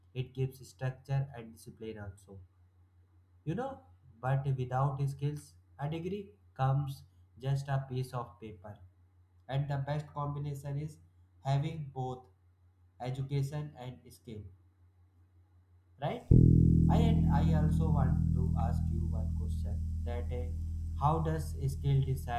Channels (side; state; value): both; identical; correlation 1.00